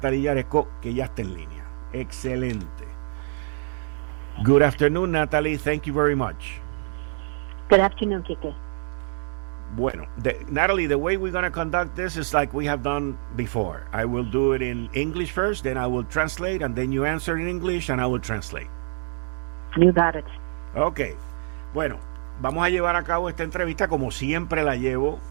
Jaresko, que ya está en línea. Excelente. Good afternoon, Natalie. Thank you very much. Good afternoon, Kike. Bueno, Natalie, the way we're going to conduct this is like we have done before. I will do it in English first, then I will translate, and then you answer in English, and I will translate. You got it. Ok. Bueno, vamos a llevar a cabo esta entrevista como siempre la llevo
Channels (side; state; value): left; silent; digital silence